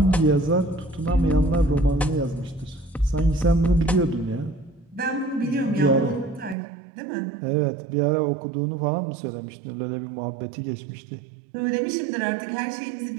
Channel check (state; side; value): drops out; left; at 6.6 s